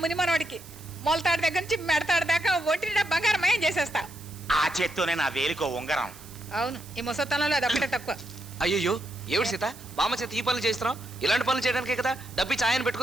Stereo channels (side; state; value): right; noise; hiss, 19 dB below the sound